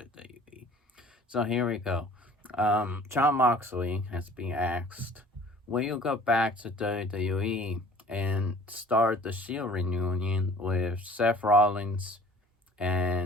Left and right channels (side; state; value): both; normal; correlation 0.50